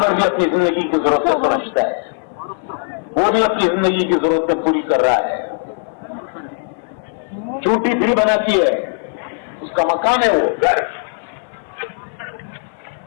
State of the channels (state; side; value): silent; right; 57 dB below the other